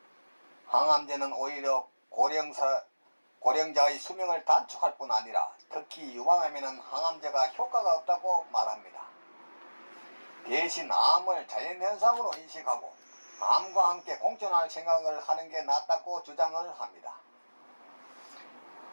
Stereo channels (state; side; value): inverted; both; correlation -1.00